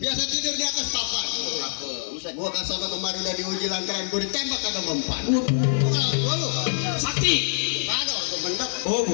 Biasa tidur di atas papan. Gua ke sono kemarin udah diuji lantaran gue ditembak kagak mempan. Gua lu Sakti. kagak gua bener. Oh,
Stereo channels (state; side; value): silent; right; digital silence